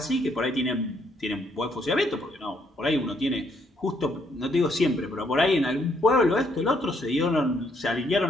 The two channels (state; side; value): normal; both; correlation 0.71